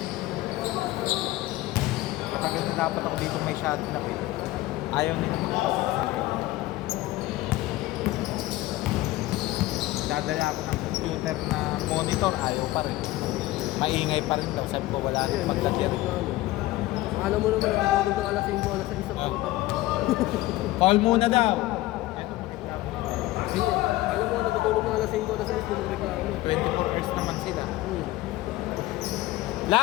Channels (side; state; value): right; quieter; 17.4 dB